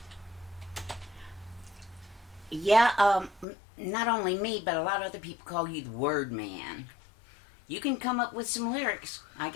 Yeah, not only me, but a lot of other people call you the word man. You can come up with some lyrics. I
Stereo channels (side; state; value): right; drops out; at 3.5 s